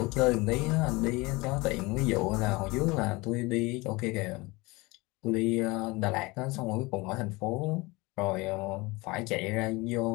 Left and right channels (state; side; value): quieter; right; 23.7 dB